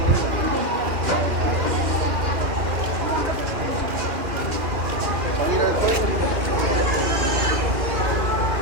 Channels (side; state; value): left; late; 2.4 ms